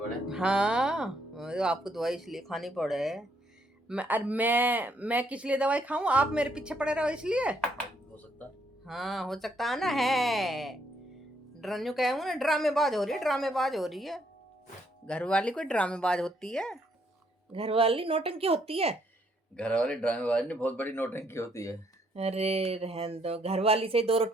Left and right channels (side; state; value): both; normal; correlation 0.71